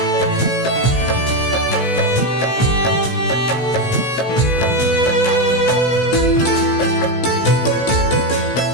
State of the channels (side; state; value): right; late; 16 ms